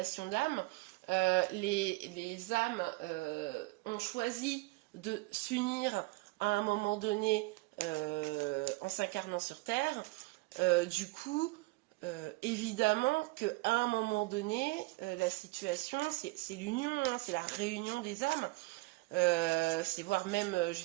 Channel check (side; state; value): left; quieter; 23.0 dB